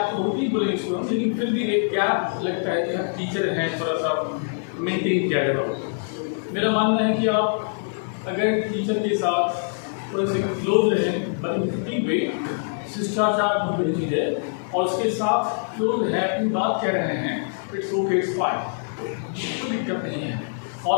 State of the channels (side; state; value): right; silent; digital silence